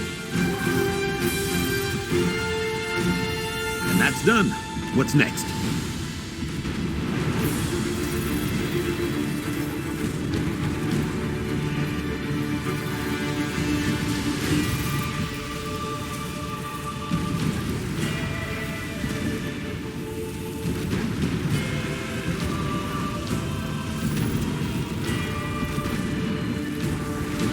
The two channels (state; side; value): identical; both; correlation 1.00